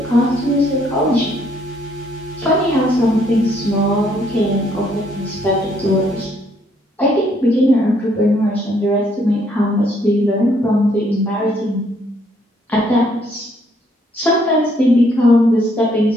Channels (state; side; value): normal; both; correlation 0.68